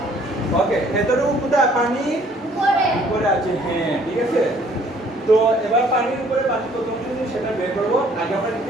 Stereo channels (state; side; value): normal; both; correlation 0.60